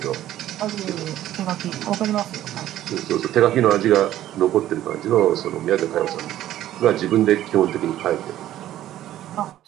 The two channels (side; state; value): left; quieter; 13.1 dB